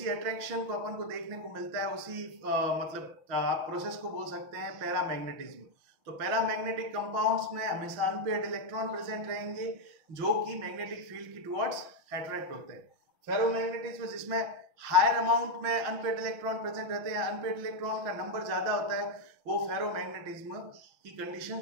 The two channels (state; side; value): late; left; 6.2 ms